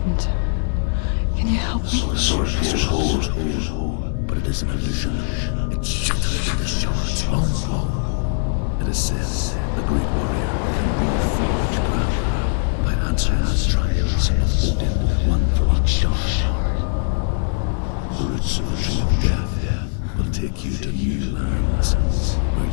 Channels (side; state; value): right; silent; digital silence